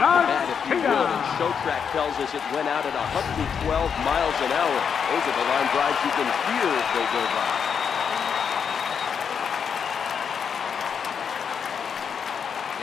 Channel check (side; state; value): right; quieter; 7.0 dB